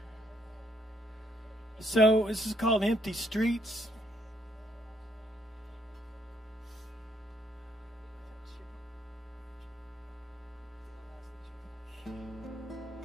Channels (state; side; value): normal; both; correlation 0.71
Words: So this is called Empty Streets.